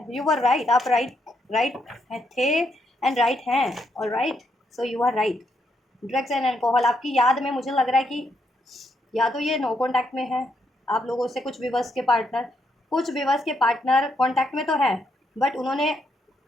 यू आर राइट, आप राइट थे एंड राइट हैं, और right, so you are right. Drugs and alcohol आपकी याद में मुझे लग रहा है कि या तो ये नो कॉन्टैक्ट में है आप लोगों से, कुछ व्यूवर्स के पार्टनर कॉन्टैक्ट में तो है बट उन्होंने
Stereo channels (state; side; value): normal; both; correlation 0.77